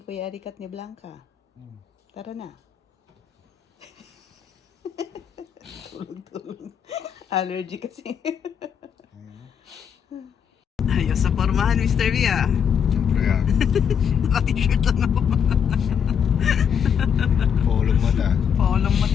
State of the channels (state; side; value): quieter; right; 7.7 dB